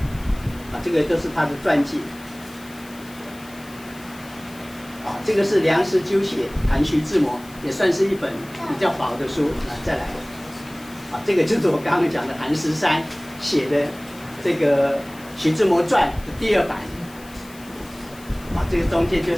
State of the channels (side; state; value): left; noise; hiss, 21 dB below the sound